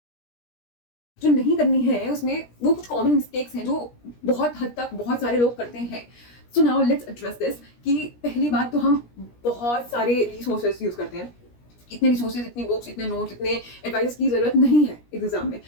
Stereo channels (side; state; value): right; late; 17 ms